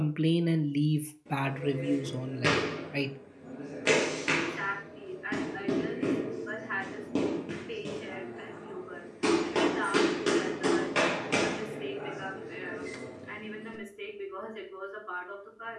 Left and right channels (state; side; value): identical; both; correlation 1.00